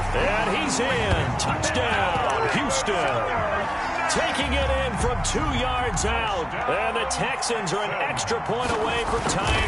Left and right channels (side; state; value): both; identical; correlation 1.00